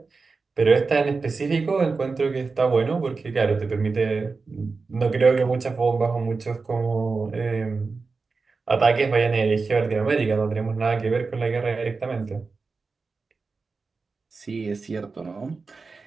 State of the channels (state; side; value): quieter; left; 4.3 dB